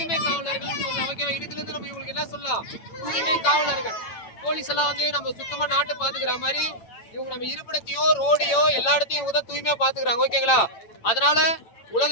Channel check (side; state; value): right; late; 8.9 ms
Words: காவலர்கள் சொல்லலாம். ஓகேவா? இதுல இருந்து நம்ம இவங்களுக்கு என்ன சொல்லலாம்? தூய்மை காவலர்கள். போலீஸ் எல்லாம் வந்து நம்ம சுத்தமா நாட்டை பாத்துக்கிற மாதிரி இவங்க நம்ம இருப்பிடத்தையோ ரோடையோ எல்லா இடத்தையும் இவங்க தான் தூய்மையா பாத்துக்கிறாங்க. ஓகேங்களா? அதனால